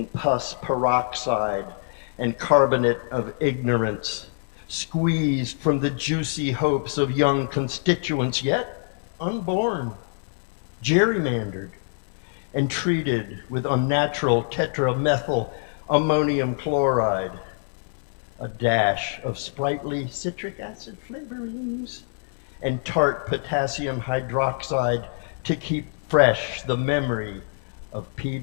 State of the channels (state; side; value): silent; right; digital silence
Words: pus peroxide and carbonate of ignorance, squeezed from the juicy hopes of young constituents yet unborn, gerrymandered, and treated with unnatural tetramethyl ammonium chloride, a dash of sprightly citric acid flavorings, and tart potassium hydroxide to keep fresh the memory of